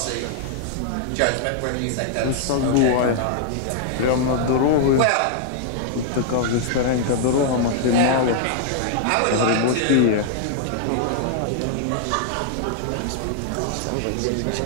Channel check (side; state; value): both; different; correlation -0.01